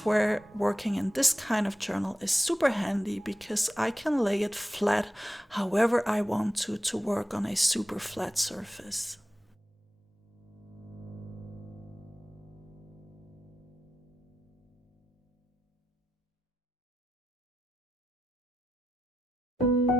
where working in this kind of journal is super handy, because I can lay it flat however I want to work on a super flat surface.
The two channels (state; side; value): normal; both; correlation 0.91